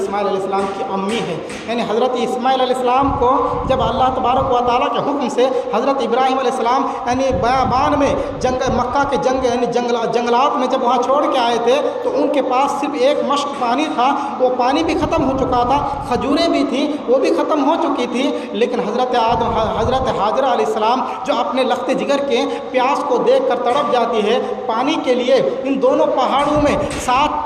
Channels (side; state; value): both; identical; correlation 1.00